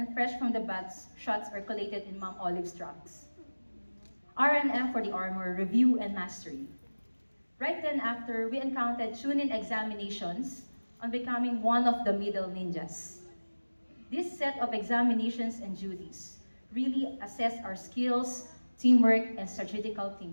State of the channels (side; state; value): both; inverted; correlation -1.00